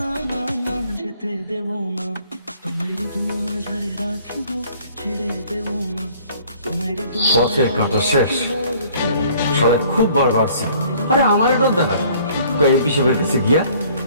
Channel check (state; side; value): inverted; both; correlation -0.56